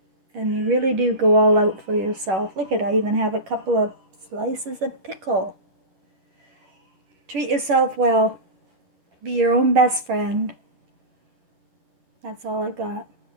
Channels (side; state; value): left; late; 10 ms